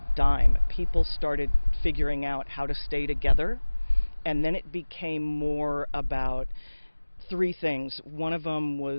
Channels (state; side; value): inverted; both; correlation -1.00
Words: dime. People started figuring out how to stay together, and then it became more about 3 things. One of them